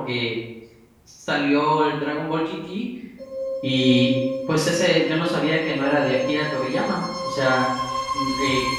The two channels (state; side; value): identical; both; correlation 1.00